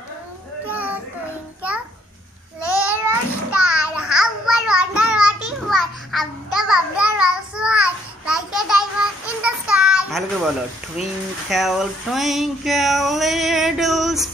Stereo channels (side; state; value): both; normal; correlation 0.67